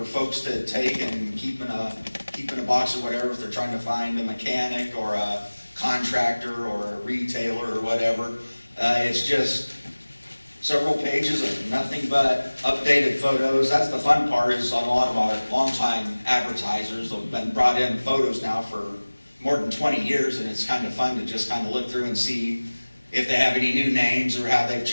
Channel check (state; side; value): inverted; both; correlation -1.00